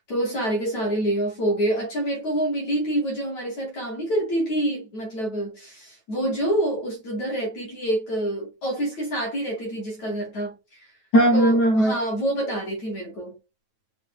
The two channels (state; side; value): late; right; 9.2 ms